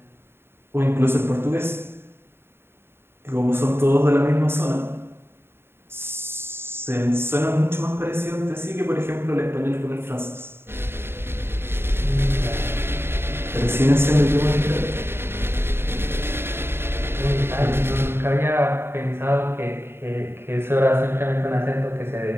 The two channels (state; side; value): late; left; 0.11 ms